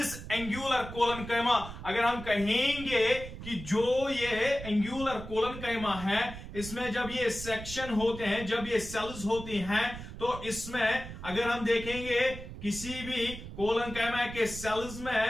angular coloncyma? अगर हम कहेंगे कि जो ये angular coloncyma है, इसमें जब ये सेक्शन होते हैं, जब ये सेल्स होती हैं, तो इसमें अगर हम देखेंगे किसी भी coloncyma के सेल्स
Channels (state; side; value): noise; right; rumble, 11 dB below the sound